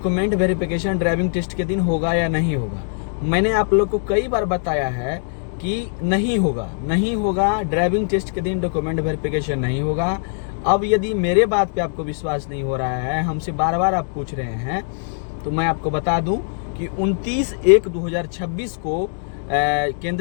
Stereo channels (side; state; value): right; silent; digital silence